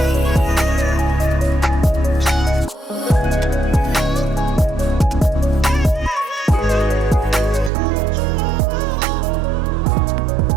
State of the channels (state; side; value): drops out; left; at 7.7 s